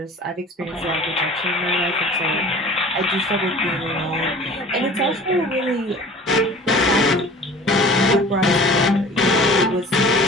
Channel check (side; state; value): both; normal; correlation 0.44